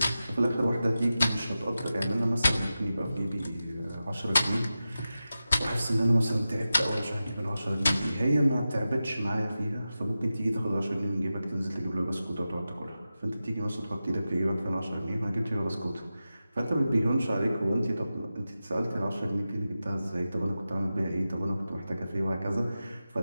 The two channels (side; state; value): both; inverted; correlation -0.93